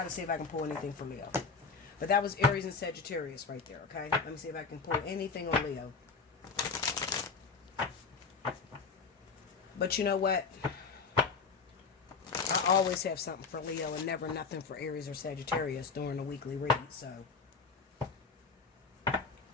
to see if I can pull anything for Leo. But that was Aries and Sagittarius right there, okay? Let me see if I can pull anything on Leo. But you know what? I always have something for Leo and never nothing for Aries or Sagittarius during the weekly read, so. I'm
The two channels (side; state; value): right; quieter; 4.9 dB